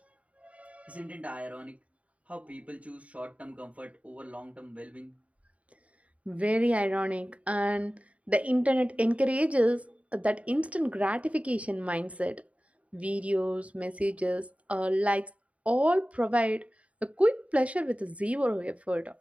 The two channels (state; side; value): late; left; 0.066 ms